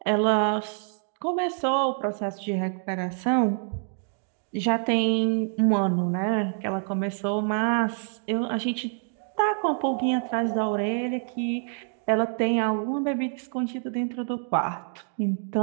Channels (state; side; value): silent; left; 60 dB below the other